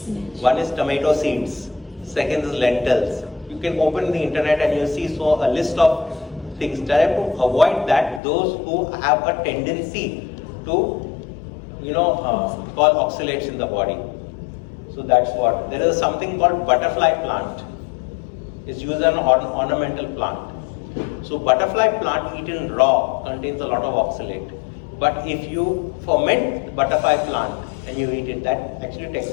One is tomato seeds. Second is lentils. You can open the internet and you see a list of things. Try to avoid that. Those who have a tendency to, call oxalates in the body. So that's what. There is something called butterfly plant. It's used as an ornamental plant. So butterfly plant eaten raw contains a lot of oxalate. But if you ferment the butterfly plant and you eat it, that actually takes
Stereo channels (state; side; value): drops out; right; at 8.2 s